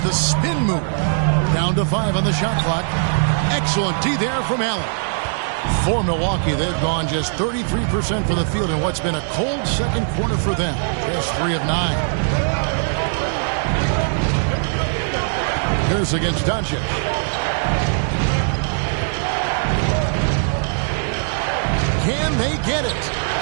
the spin move. Down to 5 on the shot clock. Excellent D there from Allen. For Milwaukee, they've gone just 33% from the field in what's been a cold second quarter for them. Just 3 of 9. Here's against Doncic. Can they get it?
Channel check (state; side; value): silent; left; digital silence